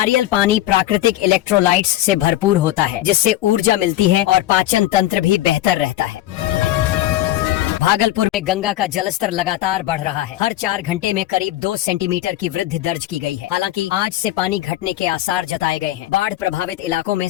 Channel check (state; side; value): quieter; right; 14.5 dB